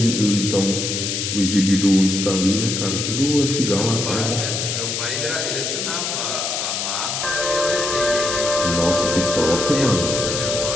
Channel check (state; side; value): noise; left; hiss, 2 dB below the sound